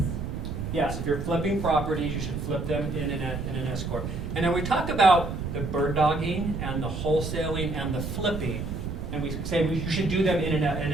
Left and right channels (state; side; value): noise; right; rumble, 5 dB below the sound